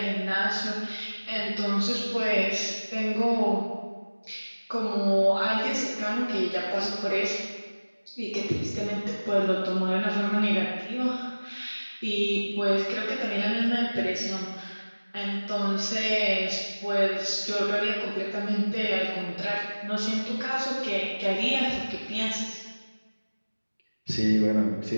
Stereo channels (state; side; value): inverted; both; correlation -1.00